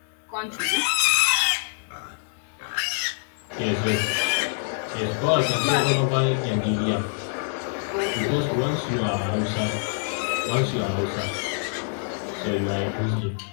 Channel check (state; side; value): silent; right; 62 dB below the other